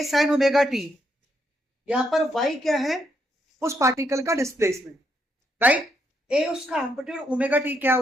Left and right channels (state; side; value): normal; both; correlation 0.77